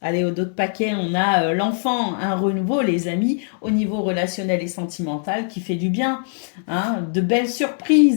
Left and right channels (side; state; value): right; silent; 65 dB below the other